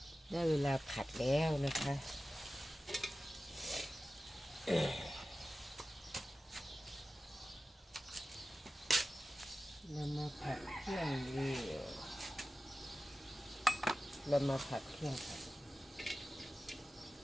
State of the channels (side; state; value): both; normal; correlation 0.95